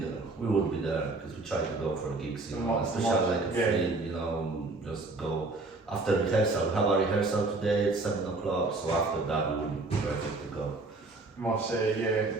We would be there because we try to go for gigs, especially like a free, just go after rehearsal. We have a rehearsal today at 7 o'clock, so after that we would be perfect to go.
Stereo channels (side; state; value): left; quieter; 3.3 dB